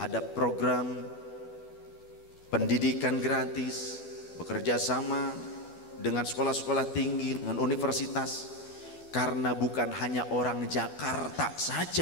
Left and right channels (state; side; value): late; right; 12 ms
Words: program pendidikan gratis, bekerja sama dengan sekolah-sekolah tinggi, dengan universitas. Karena bukan hanya orang Jakarta